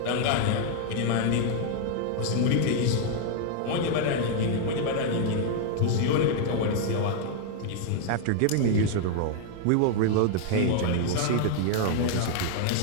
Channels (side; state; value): both; different; correlation 0.00